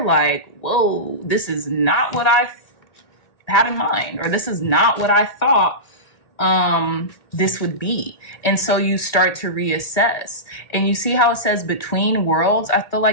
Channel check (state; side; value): late; right; 1.5 ms